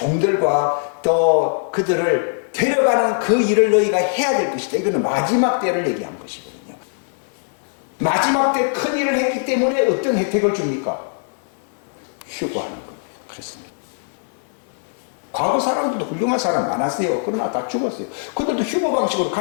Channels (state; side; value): silent; right; digital silence